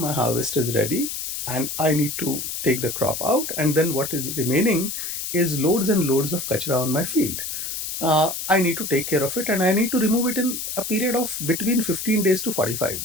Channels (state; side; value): noise; left; hiss, 5 dB below the sound